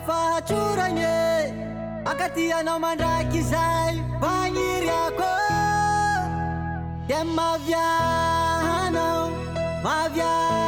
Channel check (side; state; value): both; identical; correlation 1.00